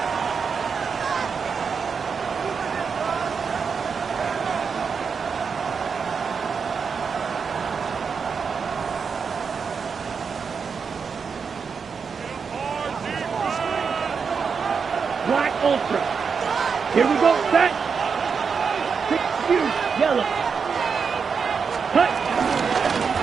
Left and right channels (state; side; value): quieter; left; 5.8 dB